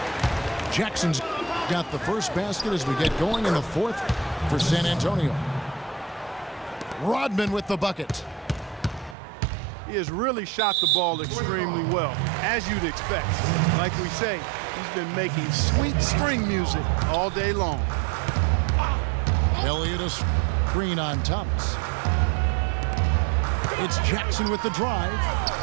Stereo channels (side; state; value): left; drops out; at 9.2 s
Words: Jackson's got the first basket as we get going in the fourth for San Antonio. Rodman with the bucket. He has really shot the ball extremely well, as you'd expect. Like we say, he's been making sweet string music all day long. Elliott a screen on Thomas. It's Jackson with the drive.